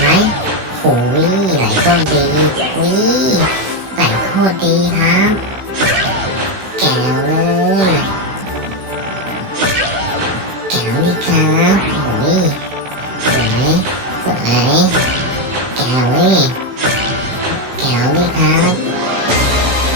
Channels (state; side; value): late; left; 16 ms